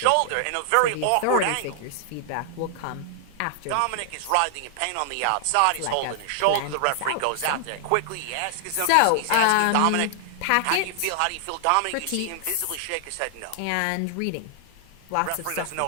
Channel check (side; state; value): both; different; correlation 0.00